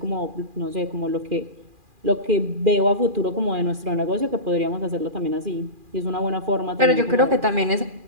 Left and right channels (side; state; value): left; late; 2.4 ms